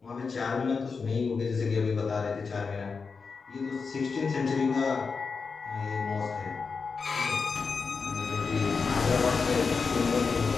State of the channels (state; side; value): quieter; right; 5.0 dB